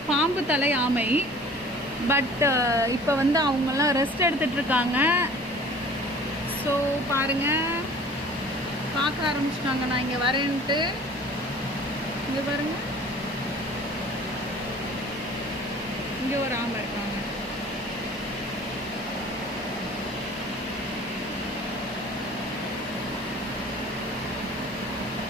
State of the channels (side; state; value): both; normal; correlation 0.47